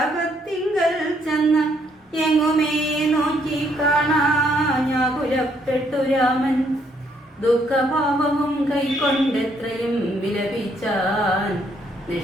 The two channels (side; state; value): both; normal; correlation 0.70